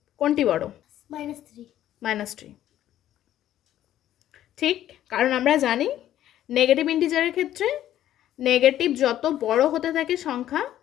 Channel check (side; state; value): right; quieter; 12.3 dB